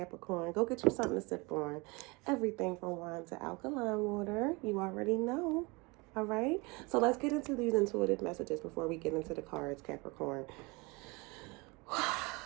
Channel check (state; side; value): quieter; left; 26.5 dB